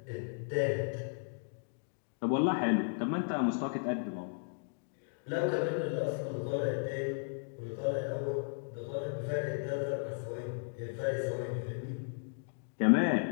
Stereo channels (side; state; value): right; silent; digital silence